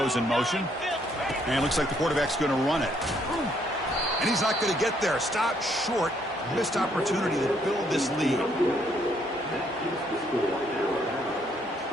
in motion. And it looks like the quarterback's going to run it. And he's not going to get there. Stopped short. Missed opportunity to build this lead.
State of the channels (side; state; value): both; normal; correlation 0.69